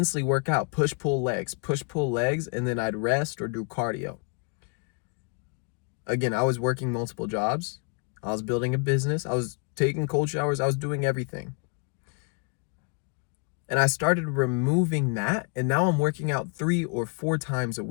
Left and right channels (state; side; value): quieter; right; 37.7 dB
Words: work out, push, pull legs, and then I'd rest or do cardio. Again, I was working multiple jobs. I was building a business. I was taking cold showers. I was doing everything. And I started removing that, and now I'm working out 3 or 4 times a